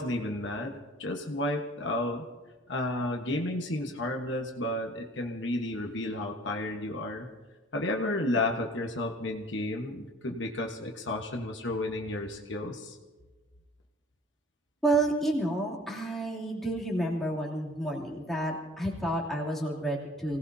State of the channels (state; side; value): normal; both; correlation 0.50